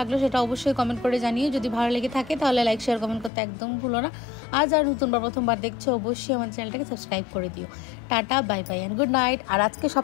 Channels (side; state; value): right; drops out; at 3.3 s